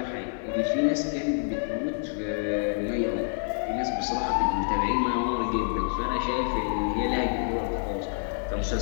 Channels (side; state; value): right; silent; 60 dB below the other